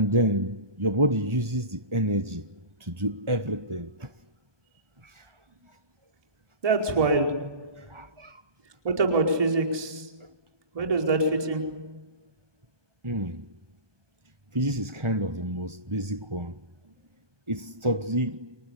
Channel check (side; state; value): left; late; 1.2 ms